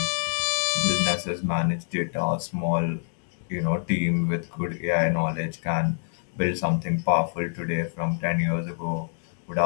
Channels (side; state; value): right; silent; digital silence